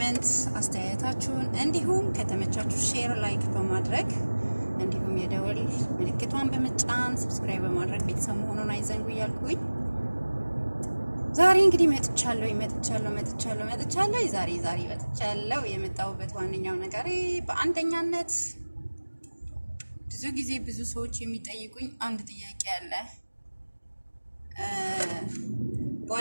አስተያየታችሁን እንዲሁም ከተመቻችሁ ሼር ላይክ በማድረግ እንዲሁም የደወል ምልክቷን በመጫን ሰብስክራይብ በማድረግ ቤተሰብ መሆኑን አይዘንጉ እያልኩኝ ዛሬ እንግዲህ መጥቻለሁ። ዛሬ መጥቻለሁ። የመጣሁበት ዋነኛው ነገር በአንደኛነት ብዙ ጊዜ ብዙ ሰዎች የሚጠይቁኝ አንድ ጥያቄ አለ።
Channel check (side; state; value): both; inverted; correlation -1.00